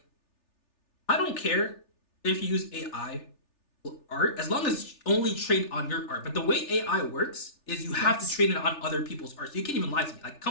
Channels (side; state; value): right; late; 3.4 ms